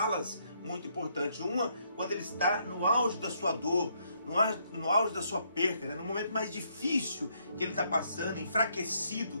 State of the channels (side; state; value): both; inverted; correlation -0.72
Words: muito importantes. Uma, quando ele está no auge da sua dor, no auge da sua perca, no momento mais difícil que ele está passando,